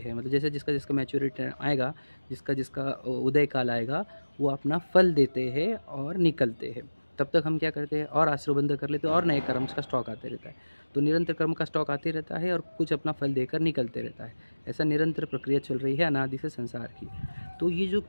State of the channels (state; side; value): inverted; both; correlation -1.00